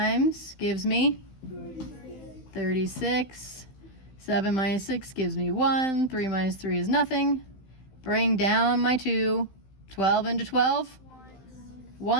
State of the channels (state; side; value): late; right; 15 ms